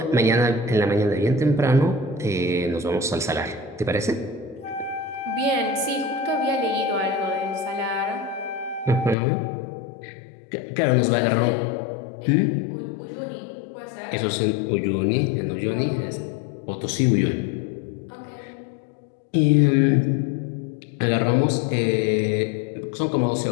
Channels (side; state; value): right; drops out; at 9.2 s